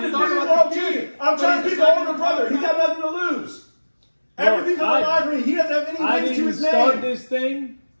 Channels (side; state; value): both; inverted; correlation -1.00